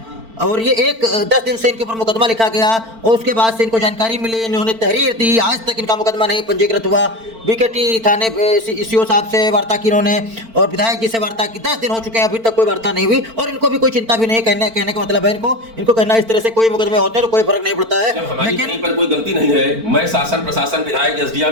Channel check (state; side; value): late; left; 4.4 ms